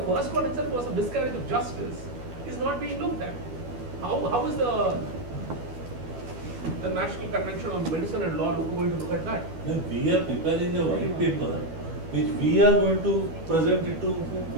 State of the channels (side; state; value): left; late; 12 ms